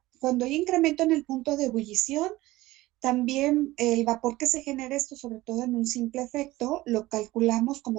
cuando hay incremento en el punto de ebullición, también el vapor que se genera, esto sobre todo en un simple efecto, lo calculamos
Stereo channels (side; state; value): left; quieter; 18.1 dB